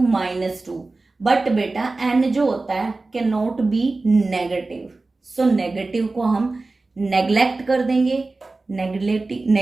minus 2। But बेटा n जो होता है can not be negative, so negative को हम नेग्लेक्ट कर देंगे।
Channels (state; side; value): quieter; left; 3.4 dB